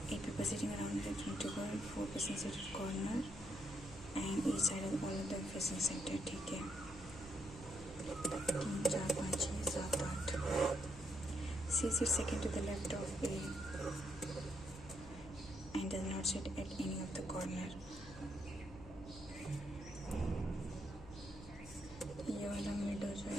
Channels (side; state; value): left; noise; hum, 16 dB below the sound